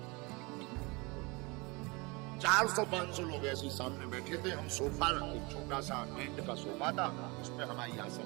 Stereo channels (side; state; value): left; quieter; 26.8 dB